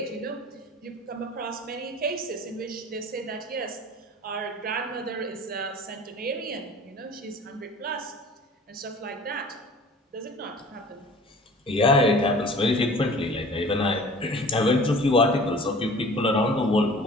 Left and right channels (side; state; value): both; normal; correlation 0.45